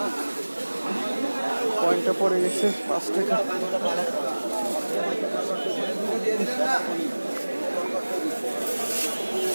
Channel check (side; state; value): both; inverted; correlation -1.00